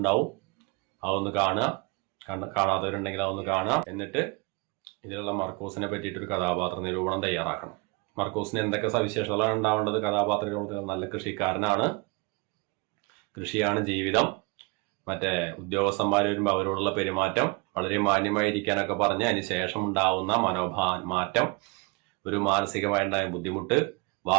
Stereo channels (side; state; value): left; quieter; 28.6 dB